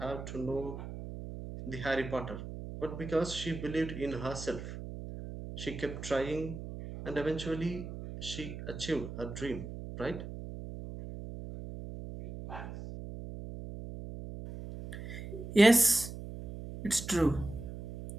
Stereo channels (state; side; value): noise; right; hum, 9 dB below the sound